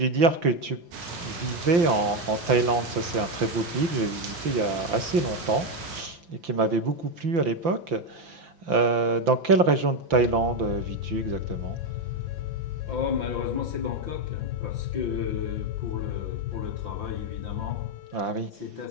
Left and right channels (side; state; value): left; late; 5.8 ms